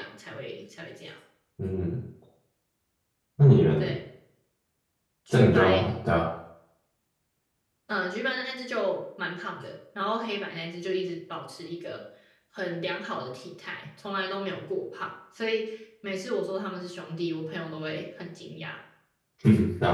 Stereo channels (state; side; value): identical; both; correlation 1.00